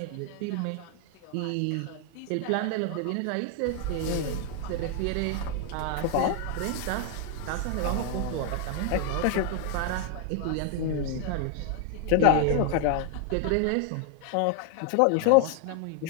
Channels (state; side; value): different; both; correlation 0.00